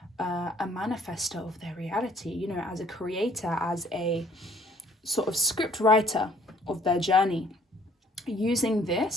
a manifester of their reality, as a creator, as a sort of script writer of their journey, using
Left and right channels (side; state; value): both; normal; correlation 0.59